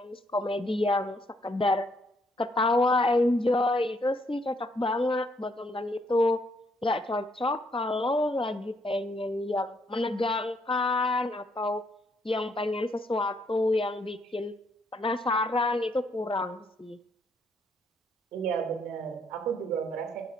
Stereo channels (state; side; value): normal; both; correlation 0.71